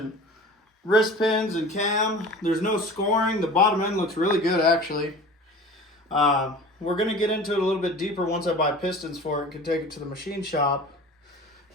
wrist pins and cam. There's no scoring. The bottom end looks really good actually. We're gonna get into it a little bit deeper once I buy pistons for it and can take it to the machine shop.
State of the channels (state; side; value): normal; both; correlation 0.40